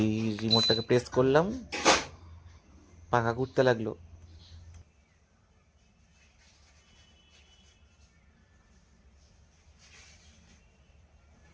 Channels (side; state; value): both; identical; correlation 1.00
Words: এই রিমোটটাকে প্রেস করলাম, পাখা ঘুরতে লাগলো।